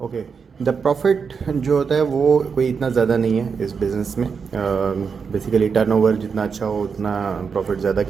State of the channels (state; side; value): quieter; left; 5.8 dB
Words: ओके, द प्रॉफिट जो होता है वो कोई इतना ज़्यादा नहीं है इस बिज़नेस में। बेसिकली टर्नओवर जितना अच्छा हो उतना प्रॉफिट ज़्यादा